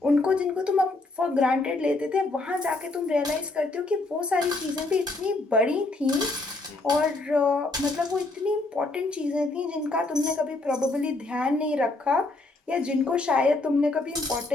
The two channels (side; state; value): right; quieter; 3.1 dB